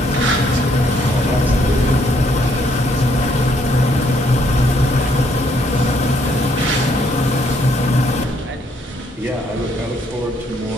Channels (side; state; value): both; normal; correlation 0.69